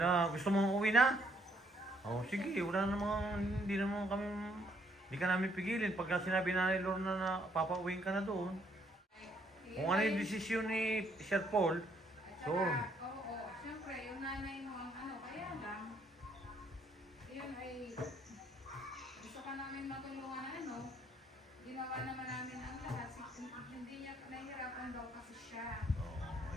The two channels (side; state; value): both; normal; correlation 0.68